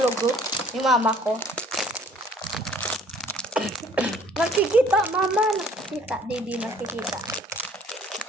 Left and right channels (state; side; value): normal; both; correlation 0.56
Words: yung mama ko. Nakikita, mama. Nakikita. Di nakikita.